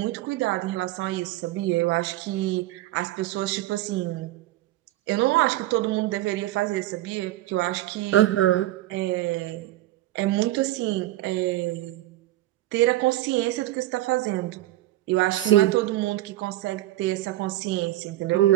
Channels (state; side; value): quieter; left; 15.8 dB